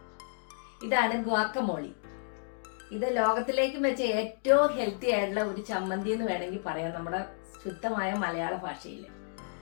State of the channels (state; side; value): silent; right; digital silence